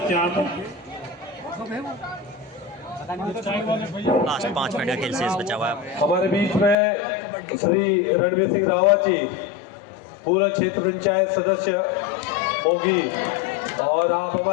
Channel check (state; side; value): drops out; right; at 6.8 s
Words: यहाँ पर। लास्ट 5 मिनट का खेल शेष बचा हुआ है। हमारे बीच में श्री रणवीर सिंह रावत जी, पूर्व क्षेत्र पंचायत सदस्य मोगी, और आप